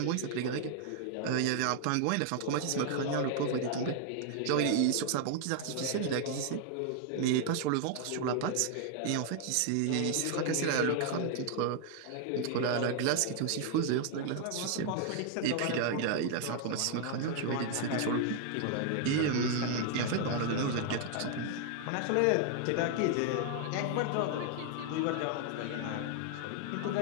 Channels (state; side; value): different; both; correlation 0.00